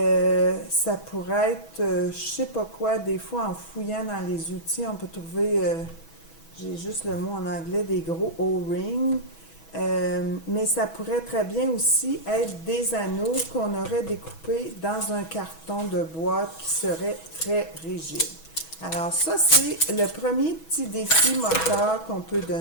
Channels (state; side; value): late; right; 6.2 ms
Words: pourrait être, je sais pas quoi, des fois en fouillant dans les outils, on peut trouver j'ai juste le mot en anglais, des gros O-rings. Mais ça pourrait très bien aussi être des anneaux qu'on aurait découpés dans un carton de boîte qui serait très rigide. Alors ça, c'est le premier petit défi moteur qu'on peut